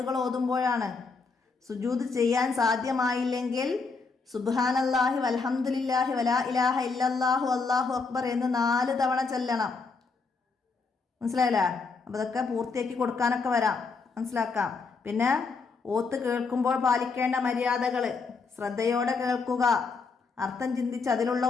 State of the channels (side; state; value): right; quieter; 4.5 dB